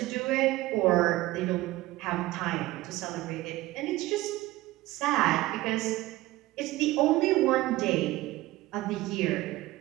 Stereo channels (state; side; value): quieter; left; 18.0 dB